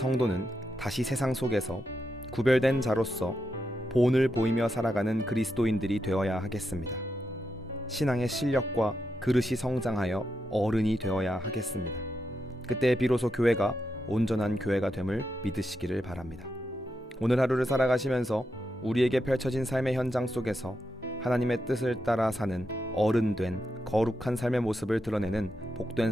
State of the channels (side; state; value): both; normal; correlation 0.85